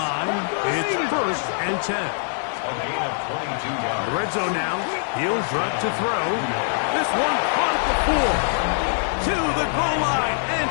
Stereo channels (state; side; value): silent; right; digital silence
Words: it's 1st and 10. A gain of 22 yards. The red zone now. He'll drop to throw. This one caught at the 4. To the goal line and